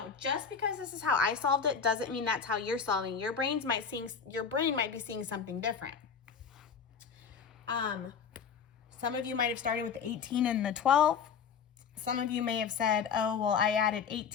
Just because this is how I solved it doesn't mean that's how you're solving. Your brain might be seeing something different. Some of you might have started with the 18 and the 12. Some of you may have said, oh, well, I added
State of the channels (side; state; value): right; quieter; 6.4 dB